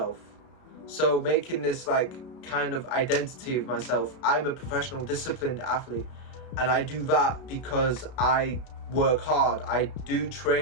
So making this like kind of identity of myself. I'm a professional disciplined athlete, and I do that because I work hard. I do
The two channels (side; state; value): right; late; 32 ms